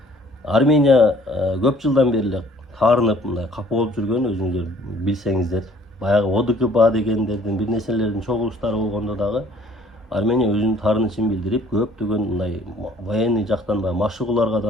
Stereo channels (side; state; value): both; normal; correlation 0.57